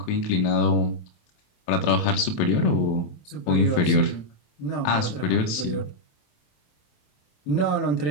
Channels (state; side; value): late; right; 27 ms